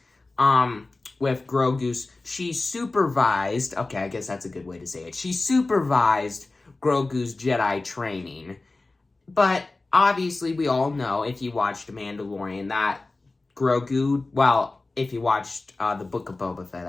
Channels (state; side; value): quieter; right; 3.3 dB